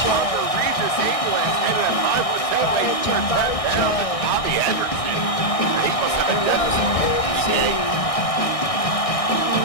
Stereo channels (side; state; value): right; late; 1.6 ms